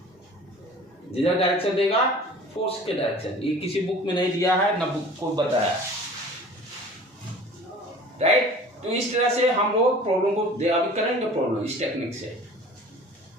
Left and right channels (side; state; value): both; normal; correlation 0.44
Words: जिधर डायरेक्शन देगा फोर्स के डायरेक्शन। ये किसी बुक में नहीं दिया है, ना बुक को बताया, राइट। तो इस तरह से हम लोग प्रॉब्लम को अभी करेंगे, प्रॉब्लम इस टेक्निक